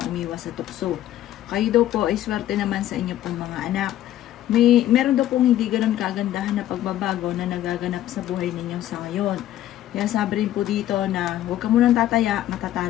umiwas sa tukso. Kayo daw po ay swerte naman sa inyong pong mga anak. Meron daw pong hindi ganun kagandahan na pagbabago na nagaganap sa buhay ninyo sa ngayon. Kaya sabi rin po dito na huwag ka munang tataya,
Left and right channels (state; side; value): quieter; right; 12.9 dB